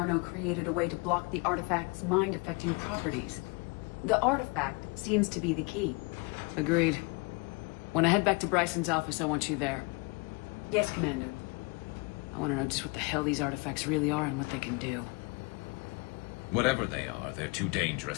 created a way to block the artifact's mind-affecting properties. The artifact seems to be the key. Agreed. When I head back to Bryson's office, I want you there. Yes, Commander. I want to know just what the hell these artifacts really are and what they can do. Whatever they are, they're too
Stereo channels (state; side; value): quieter; right; 29.9 dB